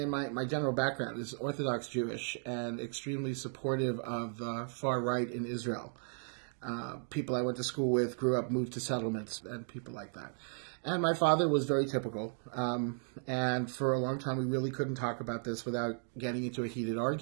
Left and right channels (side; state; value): left; silent; 54 dB below the other